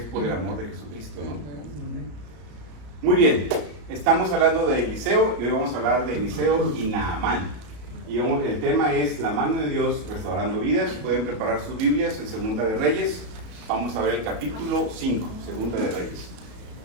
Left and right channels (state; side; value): late; left; 33 ms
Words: por el amor de Jesucristo, ¿no? Muy bien, estamos hablando de Eliseo, y hoy vamos a hablar de Eliseo y Naamán. Y el tema es la mano de Dios restaurando vidas. Pueden preparar sus Biblias en Segunda de Reyes. Vamos a ver el capítulo 5, Segunda de Reyes.